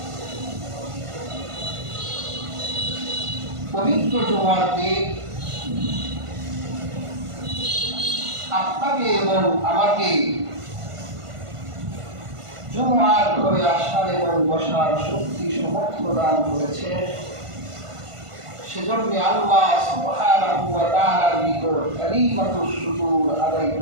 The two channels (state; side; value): late; left; 1.5 ms